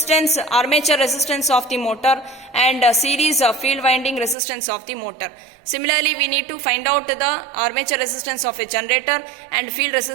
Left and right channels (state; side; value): drops out; left; at 4.4 s